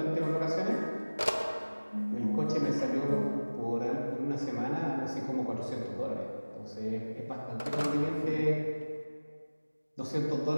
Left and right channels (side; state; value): both; inverted; correlation -1.00